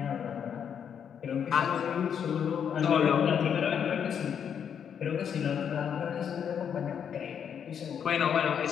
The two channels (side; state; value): right; quieter; 8.0 dB